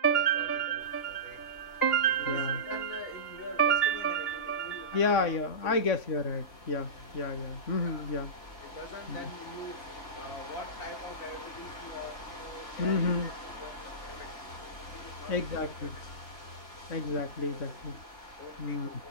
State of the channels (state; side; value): late; right; 3.4 ms